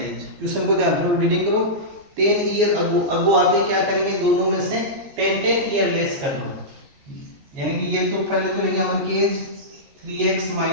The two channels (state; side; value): late; left; 14 ms